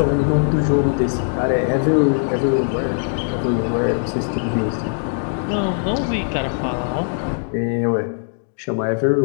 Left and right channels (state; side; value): silent; right; digital silence